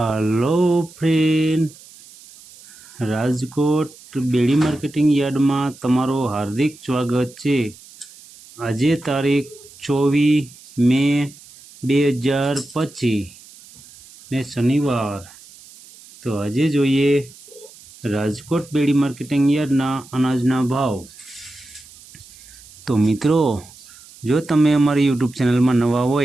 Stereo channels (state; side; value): noise; right; hiss, 22 dB below the sound